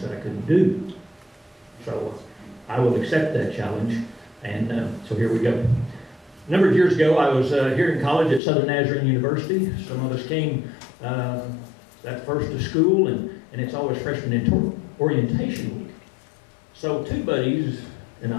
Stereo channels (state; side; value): drops out; right; at 8.4 s